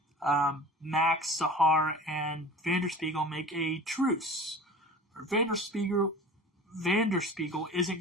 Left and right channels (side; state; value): both; normal; correlation 0.39